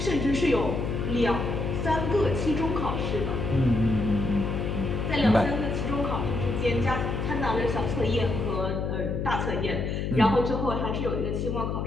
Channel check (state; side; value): noise; left; hum, 1 dB below the sound